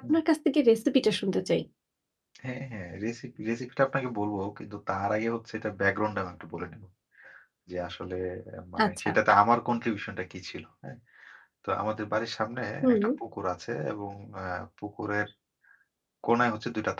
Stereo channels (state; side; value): identical; both; correlation 1.00